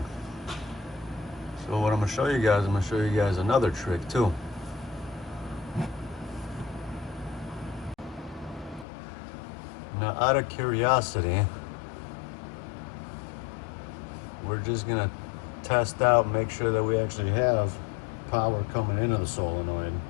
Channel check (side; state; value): right; drops out; at 8.8 s